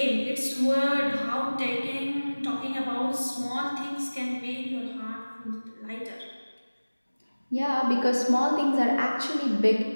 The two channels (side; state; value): both; inverted; correlation -1.00